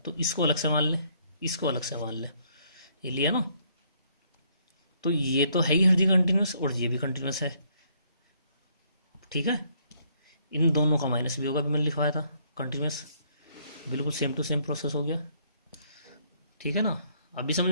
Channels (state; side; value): inverted; both; correlation -0.69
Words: इसको अलग से मान लें, इसको अलग से मान लें, ये लिया ना। तो ये तो है ही हर जगह कंटिन्यूस और ये भी कंटिन्यूस है। ठीक है, इन दोनों का माइनस भी होगा, भी मैंने लिखवाया था कंटिन्यूस, बिल्कुल सेम टू सेम प्रोसेस हो गया। ठीक है ना। अभी समझ